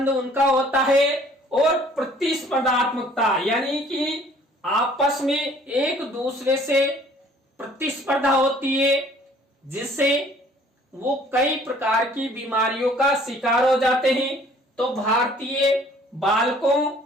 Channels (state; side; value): normal; both; correlation 0.55